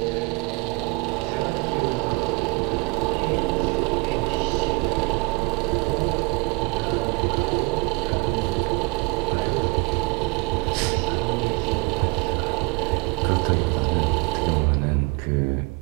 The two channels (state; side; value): quieter; left; 27.4 dB